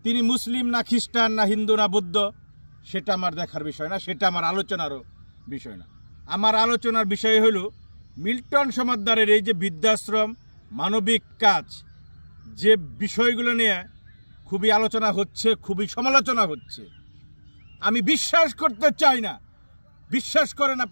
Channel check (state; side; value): inverted; both; correlation -1.00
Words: তিনি মুসলিম না খ্রিস্টান না হিন্দু না বৌদ্ধ সেটা আমার দেখার বিষয় না, সেটা আমার আলোচনারও বিষয় না। আমার আলোচনার বিষয় হলো মিল্টন সমাদ্দারের এই যে বৃদ্ধাশ্রম, মানবিক কাজ, যে বিষয়গুলো নিয়ে খুবই আলোচনা হচ্ছে, খুবই সমালোচনা হচ্ছে। আমি বিশ্বাস করতে চাই না, বিশ্বাস করেন